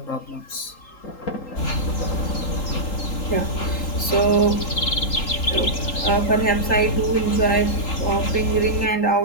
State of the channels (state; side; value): late; right; 3.8 ms